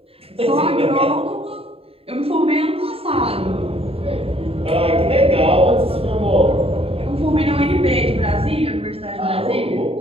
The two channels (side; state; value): left; late; 0.28 ms